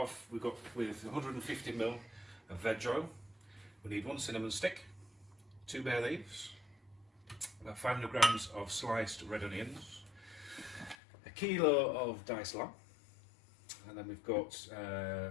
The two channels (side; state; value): right; drops out; at 11.0 s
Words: with 150ml of veg oil. We need 1 cinnamon stick, 2 bay leaves, about 500 grams of sliced red onions, a kilo of diced lamb, and then we've got